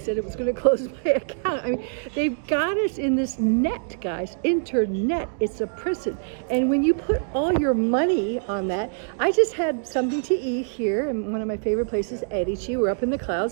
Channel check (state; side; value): silent; left; digital silence